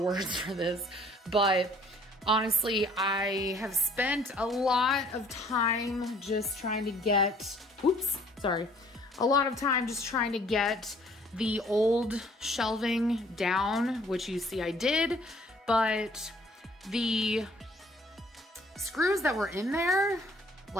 for this, but honestly, I have spent a lot of time just trying to get, a lot of time just trying to get the old shelving down, which you see I did, but the screws that were in there,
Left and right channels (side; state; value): both; normal; correlation 0.57